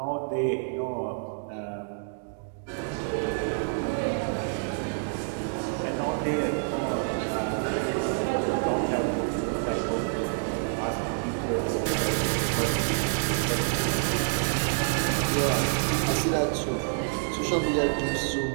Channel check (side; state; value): left; silent; digital silence